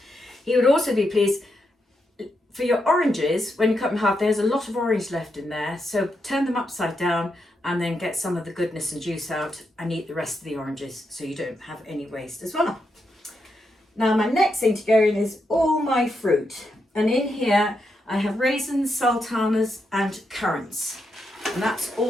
He would also be pleased for your oranges, when you cut them in half, there's a lot of orange left in there, so turn them upside down and then get some of the goodness and juice out and eat the rest of the oranges so you don't have any waste as well. Now my next thing to go in is all my fruit, and in here I have raisins, sultanas and currants, and that's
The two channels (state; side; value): normal; both; correlation 0.83